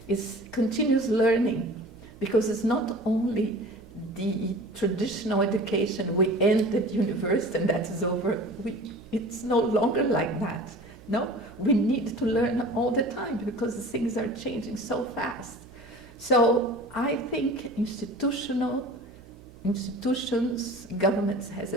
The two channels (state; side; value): noise; right; hum, 22 dB below the sound